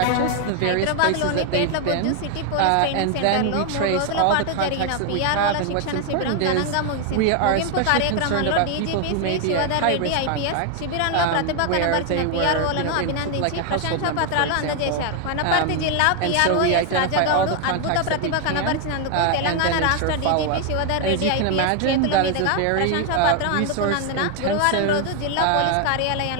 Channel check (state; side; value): different; both; correlation 0.01